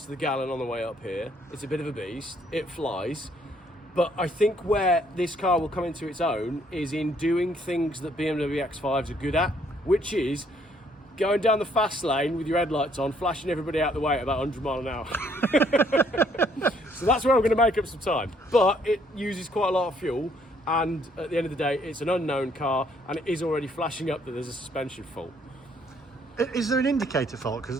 to the gallon on the way up here. It's a bit of a beast. It flies. But I think where this car will come into its own is in doing things that BMW X5s are good at, which is going down the fast lane with your headlights on, flashing everybody out the way at about 100 miles an hour. So that's where I'm going to make up some time. But it uses quite a lot of fuel, and at the end of the day, it's an unknown car, and it is already flashing up that there's a suspension fault. Is there an indicator fault? Because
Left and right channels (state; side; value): normal; both; correlation 0.66